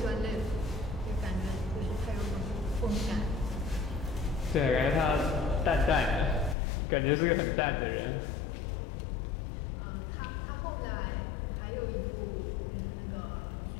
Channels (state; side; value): drops out; right; at 6.6 s